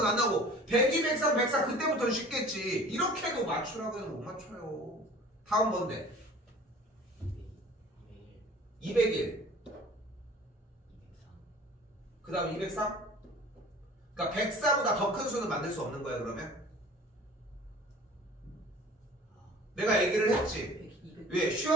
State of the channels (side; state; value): both; normal; correlation 0.45